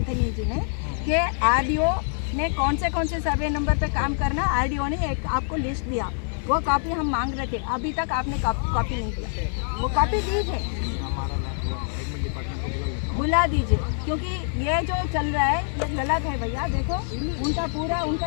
जी ने, कि आरडीओ ने कौन से सर्वे नंबर पे काम करना, आरडीओ ने एक आपको लिस्ट दिया। वो कॉपी हम मांग रहे थे, अभी तक आपने कॉपी नहीं दिया। वो कॉपी दीजिए, बुला दीजिए, क्योंकि ये जो चल रहा है ये गलत है भैया। देखो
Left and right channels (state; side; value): silent; right; digital silence